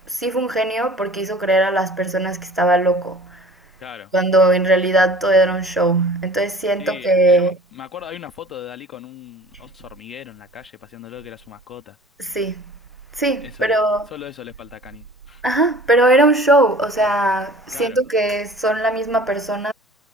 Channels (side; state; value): both; normal; correlation 0.46